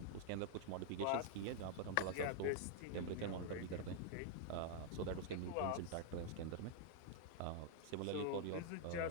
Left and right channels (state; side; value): different; both; correlation -0.01